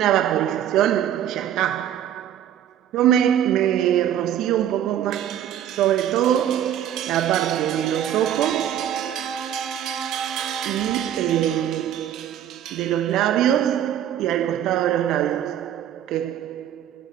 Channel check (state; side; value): quieter; left; 10.7 dB